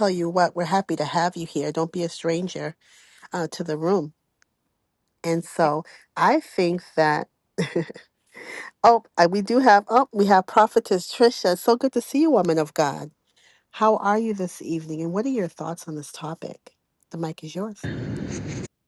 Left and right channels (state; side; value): identical; both; correlation 1.00